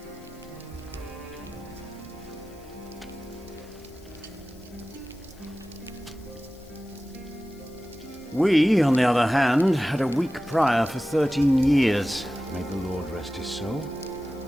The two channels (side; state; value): left; noise; hiss, 27 dB below the sound